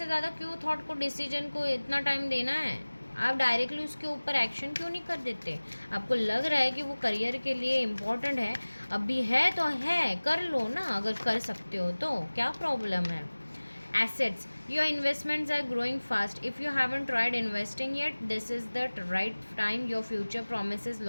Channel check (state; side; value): inverted; both; correlation -1.00